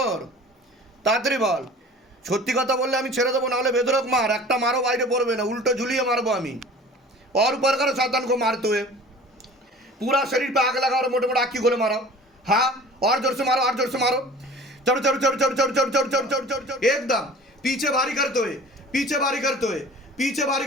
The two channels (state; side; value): normal; both; correlation 0.43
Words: তাড়াতাড়ি বল। সত্যি কথা বললে আমি ছেড়ে দেবো, নাহলে বেদরক মার, একটা মারও বাইরে পড়বে না, उल्टो झुलिए मारबो আমি। और ऊपर करो शैतान को मारते हुए, पूरा शरीर पे आग लगा और मोटे मोटे आँखी खोले मारो। हाँ, और जोर से मारो, चढ़ एकदम पीछे भारी